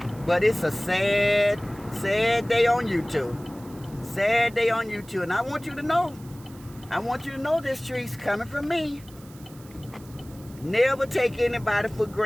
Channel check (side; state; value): right; noise; hiss, 23 dB below the sound